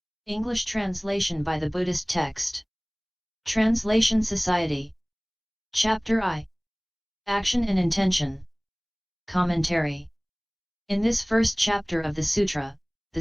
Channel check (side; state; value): both; identical; correlation 1.00